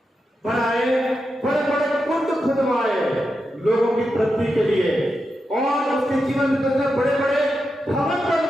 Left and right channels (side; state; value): both; normal; correlation 0.88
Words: बनाए, बड़े बड़े कुंड खुदवाए लोगों की तृप्ति के लिए, और उसके जीवन में उसने बड़े बड़े भवन